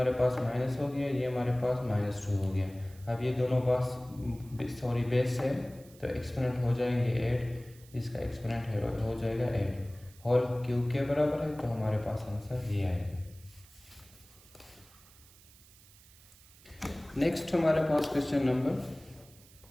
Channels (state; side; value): noise; right; hiss, 24 dB below the sound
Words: पास माइनस हो गया, ये हमारे पास -2 हो गया। अब ये दोनों बेस है तो एक्सपोनेंट हो जाएंगे 8, इसका एक्सपोनेंट हो जाएगा 8, होल क्यूब के बराबर है, तो हमारे पास आंसर ये आएगा। नेक्स्ट हमारे पास क्वेश्चन नंबर